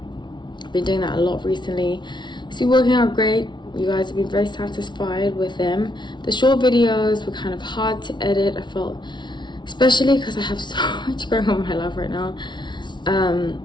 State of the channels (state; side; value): late; right; 0.22 ms